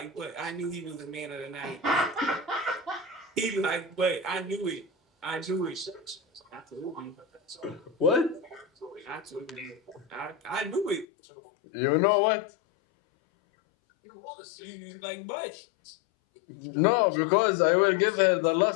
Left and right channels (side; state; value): right; drops out; at 11.1 s